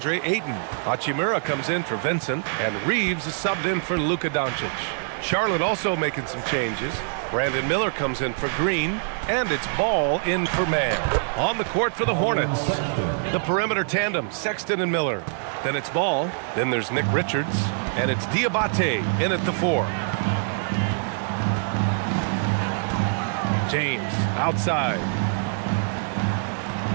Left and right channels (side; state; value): left; silent; 62 dB below the other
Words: Ayton. Hachimura comes in for Vincent, and Reeves is subbed in for Luka Doncic. Charlotte also making some changes. Brandon Miller comes in for Green, and it's Ball in for Mann. On the court for the Hornets, the perimeter tandem, Sexton and Miller. Then it's Ball, then there's Nick Richards, and it's Diabate in at the 4. James outside.